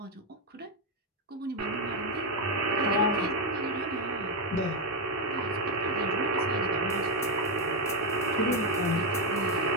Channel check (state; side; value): normal; both; correlation 0.05